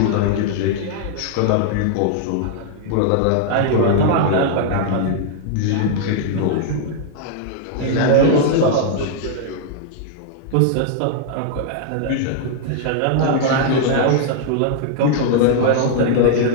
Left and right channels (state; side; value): different; both; correlation 0.00